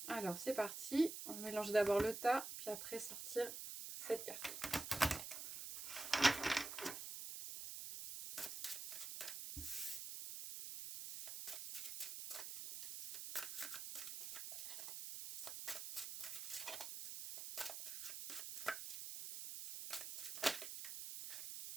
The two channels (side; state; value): right; noise; hiss, 6 dB below the sound